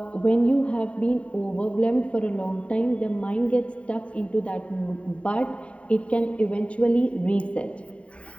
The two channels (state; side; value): late; right; 0.063 ms